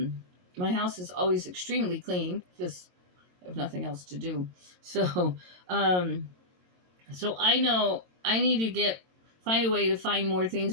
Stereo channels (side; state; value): left; late; 22 ms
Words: house is always extremely clean because I have nothing else to do. So I know I need to find a way to find more